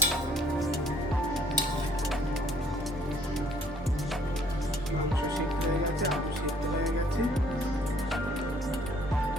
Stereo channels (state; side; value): normal; both; correlation 0.61